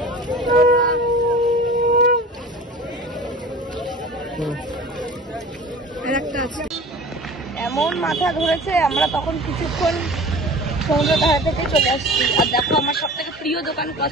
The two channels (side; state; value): both; normal; correlation 0.40